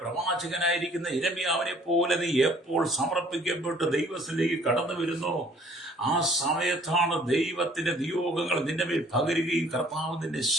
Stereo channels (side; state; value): both; normal; correlation 0.57